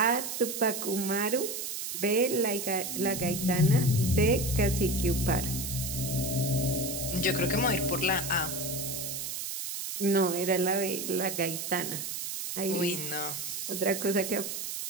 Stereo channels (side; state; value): right; noise; hiss, 5 dB below the sound